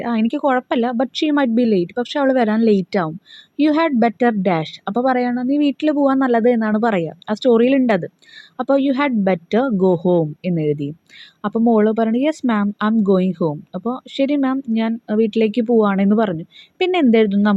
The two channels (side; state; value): both; identical; correlation 1.00